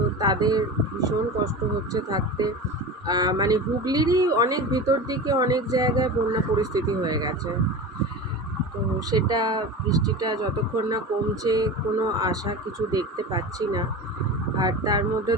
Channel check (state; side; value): normal; both; correlation 0.29